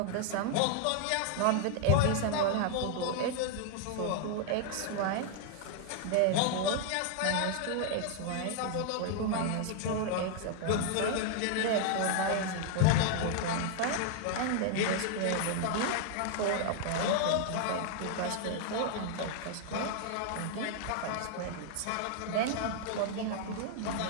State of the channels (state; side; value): different; both; correlation 0.00